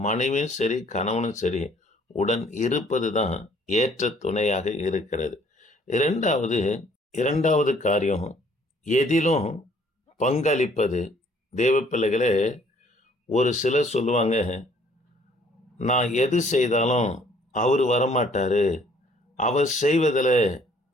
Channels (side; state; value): both; normal; correlation 0.60